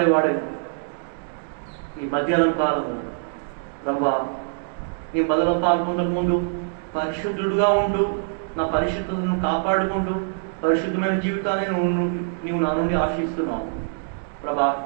ఈ మధ్యాహ్నం కాలము ప్రభా, నీ బదులు పాల్గొనక ముందు పరిశుద్ధుడుగా ఉంటూ నా పరిశుద్ధతను కాపాడుకుంటూ పరిశుద్ధమైన జీవితాన్ని నువ్వు నా నుండి ఆశిస్తున్నావు ప్రభా.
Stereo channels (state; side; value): silent; left; digital silence